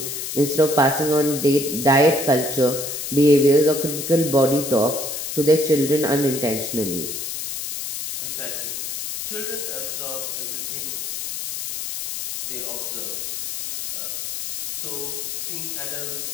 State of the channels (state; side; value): noise; left; hiss, 5 dB below the sound